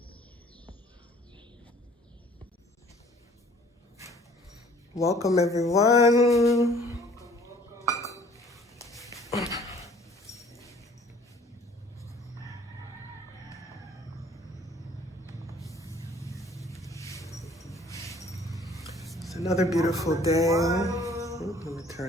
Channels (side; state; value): both; normal; correlation 0.55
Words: Welcome, everyone. It's another beautiful day. Let me